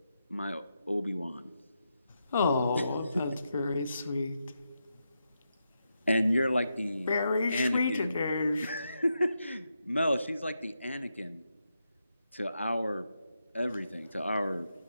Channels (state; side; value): inverted; both; correlation -0.85